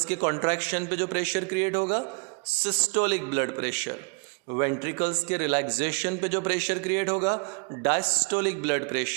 के कॉन्ट्रैक्शन पे जो प्रेशर क्रिएट होगा सिस्टोलिक ब्लड प्रेशर, वेंट्रिकल्स के रिलैक्सेशन पे जो प्रेशर क्रिएट होगा diastolic blood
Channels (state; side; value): quieter; left; 35.1 dB